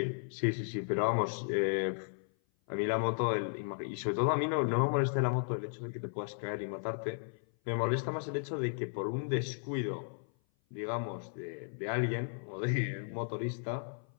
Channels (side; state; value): right; silent; 55 dB below the other